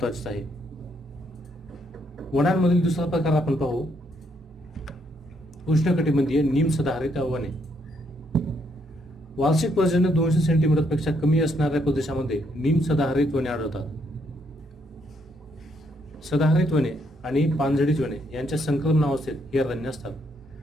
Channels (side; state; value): both; normal; correlation 0.73